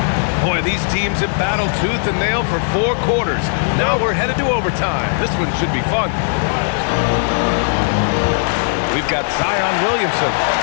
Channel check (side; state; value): right; silent; 68 dB below the other